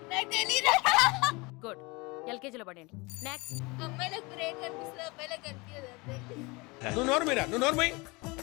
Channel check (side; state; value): right; quieter; 25.6 dB